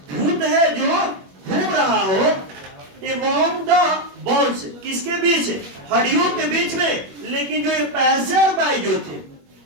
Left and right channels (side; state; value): left; late; 21 ms